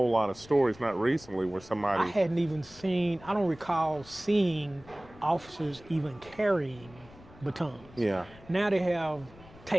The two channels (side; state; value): left; noise; rumble, 22 dB below the sound